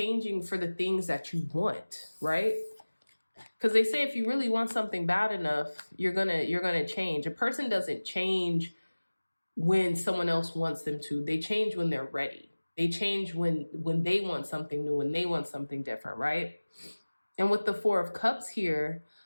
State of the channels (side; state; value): both; inverted; correlation -1.00